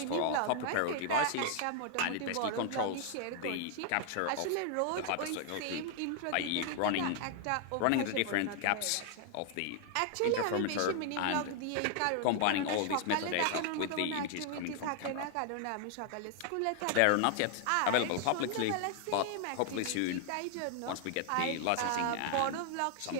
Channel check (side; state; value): both; different; correlation 0.00